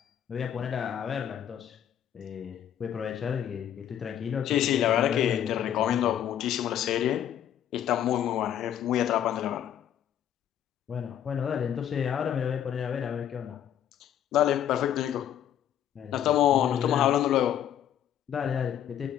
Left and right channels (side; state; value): right; quieter; 10.2 dB